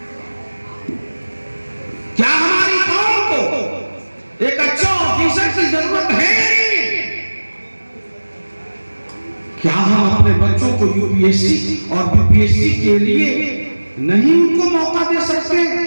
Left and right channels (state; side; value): inverted; both; correlation -1.00